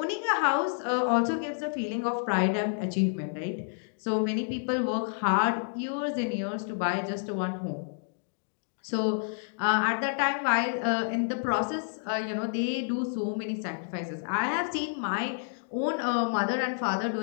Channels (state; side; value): silent; right; digital silence